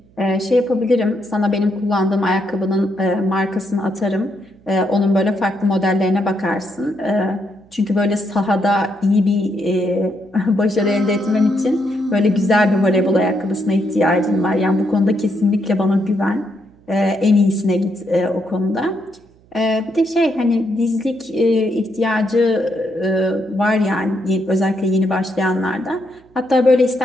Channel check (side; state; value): right; noise; hum, 30 dB below the sound